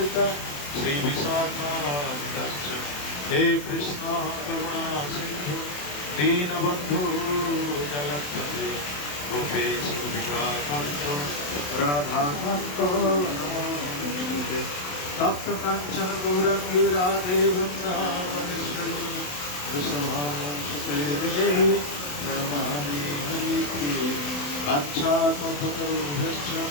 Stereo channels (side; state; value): right; late; 27 ms